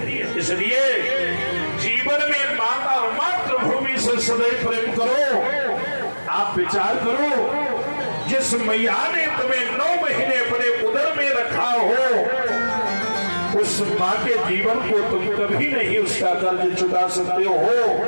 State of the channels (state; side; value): inverted; both; correlation -1.00